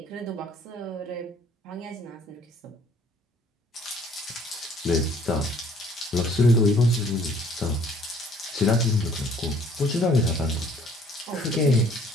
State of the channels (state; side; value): normal; both; correlation 0.58